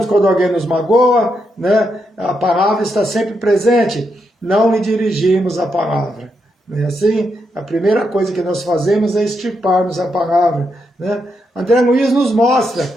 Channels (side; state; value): both; normal; correlation 0.82